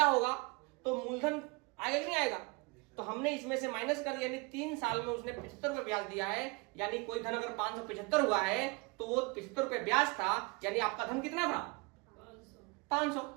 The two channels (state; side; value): quieter; left; 28.0 dB